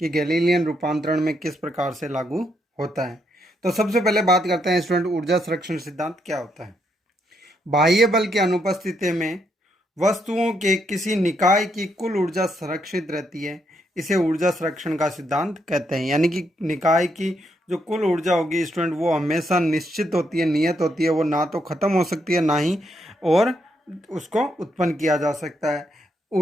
गैलीलियन रूपांतरण में किस प्रकार से लागू होता है। तो सबसे पहले बात करते हैं स्टूडेंट, ऊर्जा संरक्षण सिद्धांत क्या होता है। बाह्य बल की अनुपस्थिति में वस्तुओं के किसी निकाय की कुल ऊर्जा संरक्षित रहती है। इसे ऊर्जा संरक्षण का सिद्धांत कहते हैं। यानी कि निकाय की जो कुल ऊर्जा होगी स्टूडेंट, वो हमेशा निश्चित होती है, नियत होती है। वो ना तो खत्म हो सकती है, ना ही और उसको उत्पन्न किया जा सकता है।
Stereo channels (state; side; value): normal; both; correlation 0.77